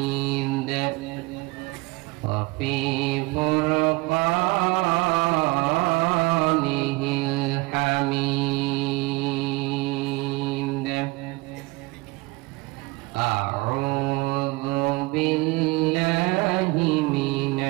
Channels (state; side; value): quieter; left; 23.3 dB